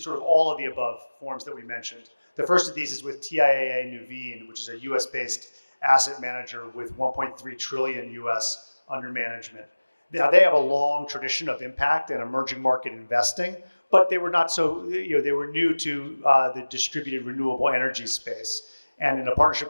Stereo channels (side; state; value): both; inverted; correlation -1.00